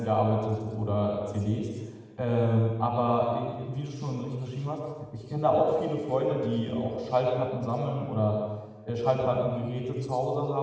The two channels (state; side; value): identical; both; correlation 1.00